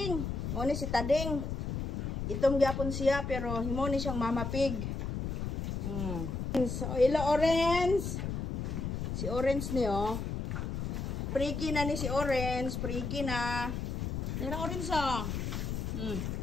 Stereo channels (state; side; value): noise; left; rumble, 3 dB below the sound